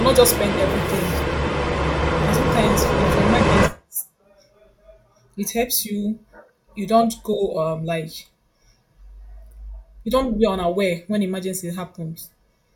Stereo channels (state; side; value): identical; both; correlation 1.00